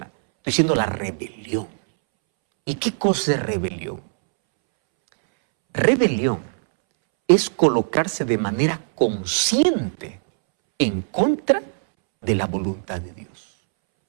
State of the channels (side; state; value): left; silent; 65 dB below the other